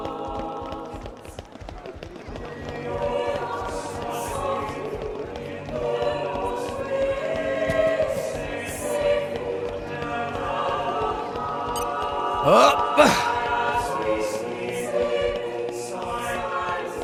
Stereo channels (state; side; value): identical; both; correlation 1.00